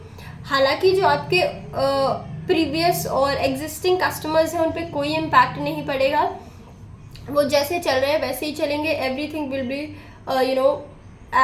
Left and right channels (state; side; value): identical; both; correlation 1.00